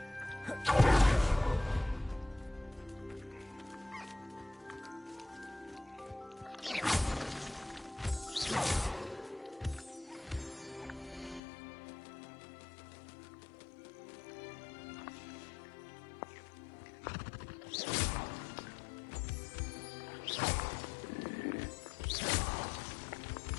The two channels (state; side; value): drops out; right; at 11.4 s